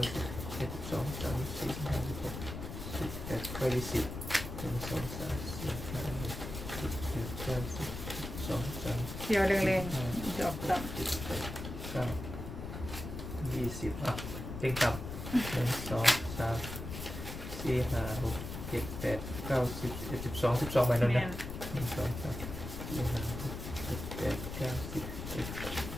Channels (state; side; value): noise; left; rumble, 7 dB below the sound